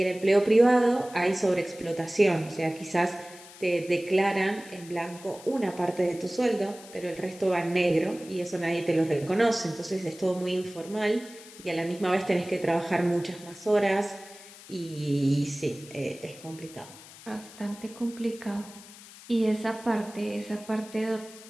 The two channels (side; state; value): left; noise; hiss, 19 dB below the sound